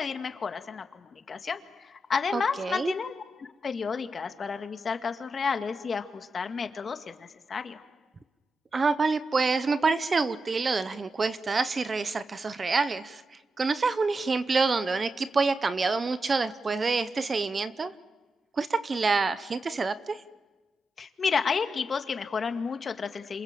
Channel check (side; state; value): both; normal; correlation 0.88